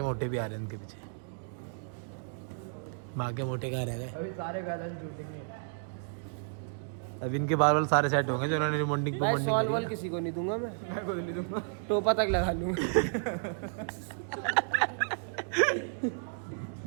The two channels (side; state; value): left; silent; digital silence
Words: मोटे भी आ रहे हैं उनके पीछे। माँ के मोटे कहाँ रह गए? अभी सारे गाने टूटेंगे। अब इनके बाल सारे सेट होंगे जो उन्होंने रिमोंडिंग भाई सॉल वॉल किसी को नहीं दूंगा मैं को नहीं दूंगा, टोपा तक लगा लूंगा।